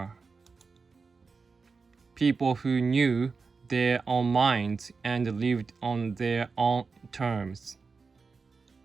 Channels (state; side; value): quieter; left; 4.7 dB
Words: People who knew their own minds and lived on their own terms.